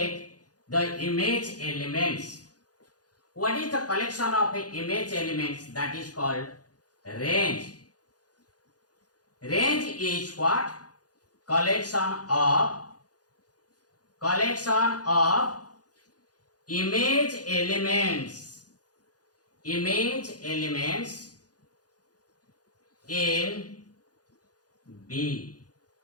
the image elements. What is the collection of image elements? That is called range. Range is what? Collection of collection of image elements in B.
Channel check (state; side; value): late; right; 0.68 ms